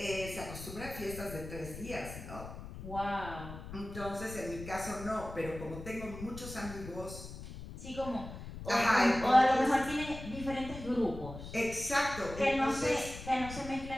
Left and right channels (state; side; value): noise; left; rumble, 11 dB below the sound